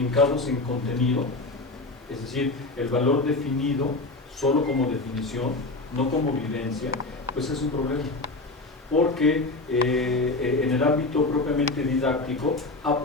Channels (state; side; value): quieter; right; 3.2 dB